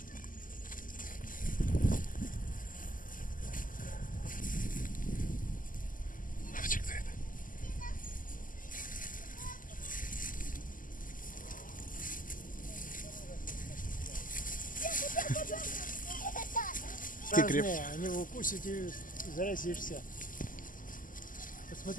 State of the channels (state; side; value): late; right; 0.39 ms